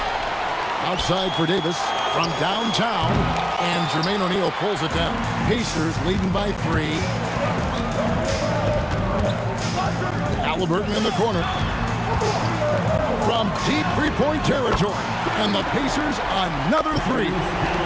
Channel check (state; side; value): identical; both; correlation 1.00